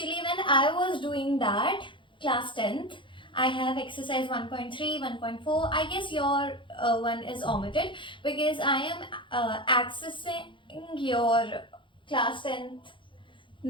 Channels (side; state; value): right; late; 0.24 ms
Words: when I was doing that, class 10th, I have exercise 1.3, 1.4. I guess your one is omitted because I am accessing your class 10th